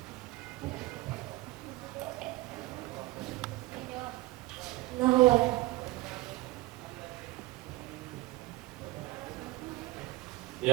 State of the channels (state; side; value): quieter; left; 19.5 dB